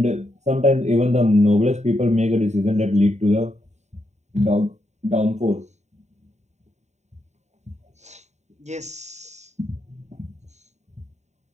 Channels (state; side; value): late; left; 0.33 ms